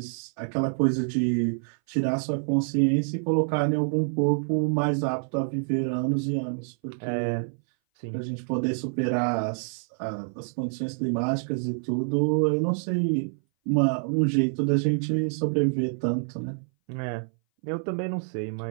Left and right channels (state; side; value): silent; left; 59 dB below the other